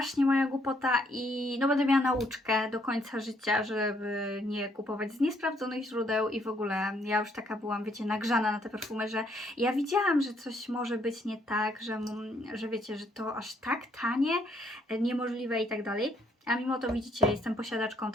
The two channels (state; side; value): normal; both; correlation 0.70